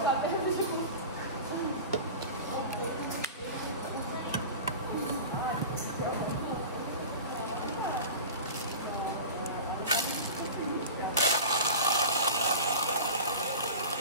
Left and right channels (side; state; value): both; inverted; correlation -0.33